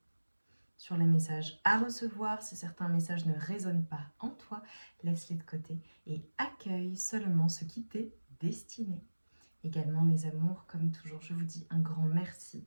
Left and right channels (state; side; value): inverted; both; correlation -1.00